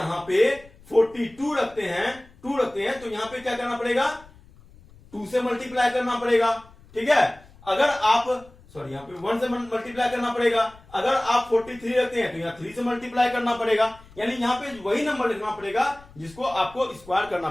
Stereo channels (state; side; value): noise; left; rumble, 24 dB below the sound